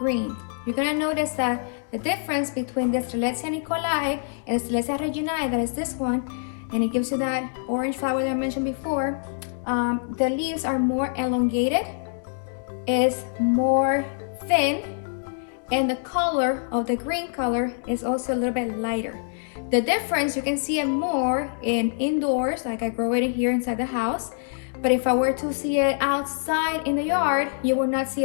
You're gonna notice that the difference between the Strelitzia nicolai and Strelitzia reginae, that is this one, and it gives you that orange flower that I mentioned before. The leaves are more elongated, is more thin, and the color of the green color is also a little bit lighter. The difference, you can see it more in indoors, like I grow it in here inside the house, But if I were to see it outside in the yard, you will not see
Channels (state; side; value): silent; right; digital silence